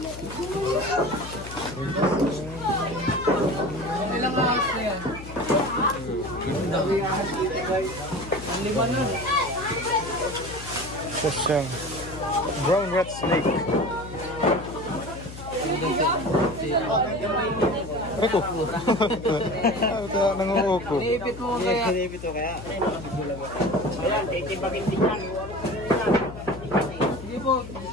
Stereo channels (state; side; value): noise; left; hum, 12 dB below the sound